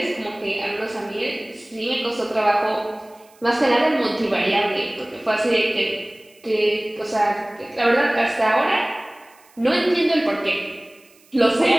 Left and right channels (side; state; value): right; noise; hiss, 30 dB below the sound